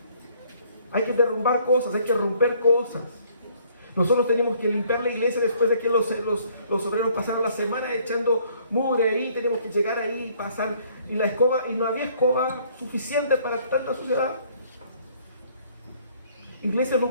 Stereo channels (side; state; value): both; inverted; correlation -0.62